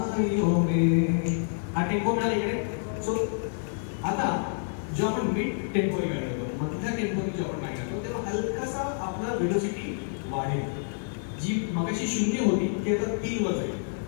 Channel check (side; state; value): right; silent; 59 dB below the other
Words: में, हा टेम्पो मिळाला इकडे. सो आता जो आपण मिड टेम्पोनी गाणी करतो, मधल्या टेम्पोनी जो आपण गाणी करतो तेव्हा हलकासा आपला वेलोसिटी वाढेल. जी मगाशी 0 होती ती आता 3 वर जाईल.